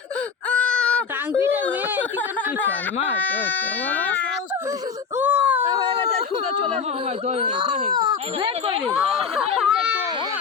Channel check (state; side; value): quieter; right; 6.0 dB